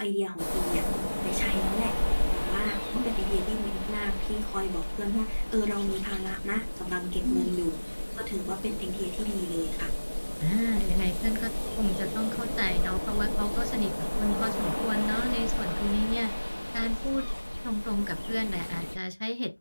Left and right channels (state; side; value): inverted; both; correlation -1.00